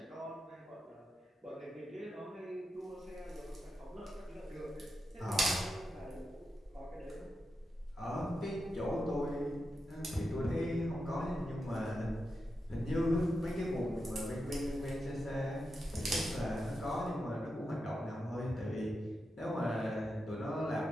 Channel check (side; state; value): both; normal; correlation 0.88